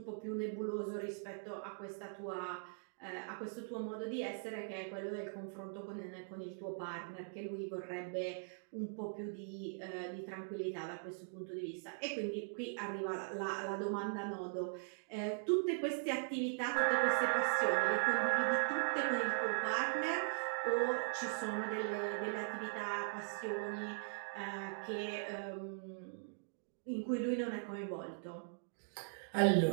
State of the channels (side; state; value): left; silent; digital silence